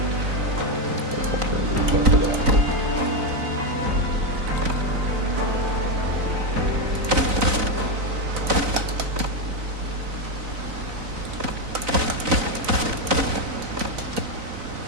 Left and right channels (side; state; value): left; late; 4.0 ms